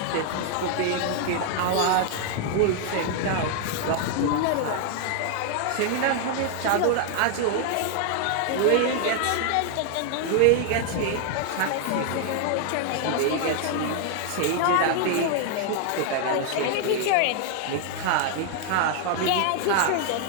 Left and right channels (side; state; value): both; different; correlation 0.00